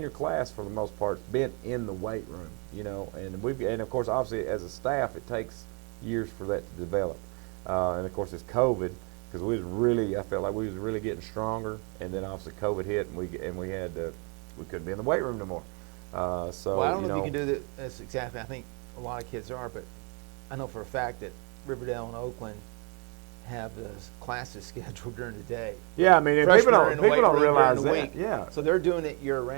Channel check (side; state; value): left; quieter; 34.4 dB